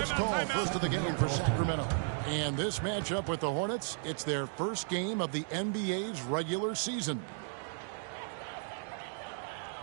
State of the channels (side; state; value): left; silent; 55 dB below the other